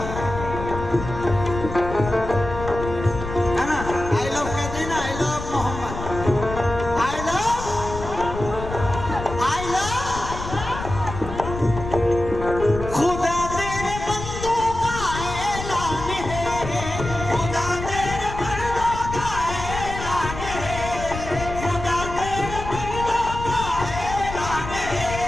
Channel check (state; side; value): noise; left; rumble, 8 dB below the sound